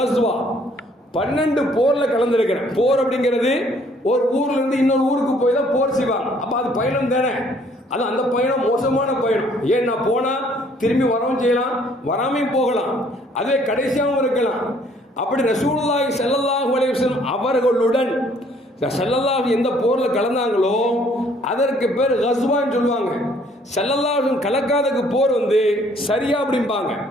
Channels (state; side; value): normal; both; correlation 0.62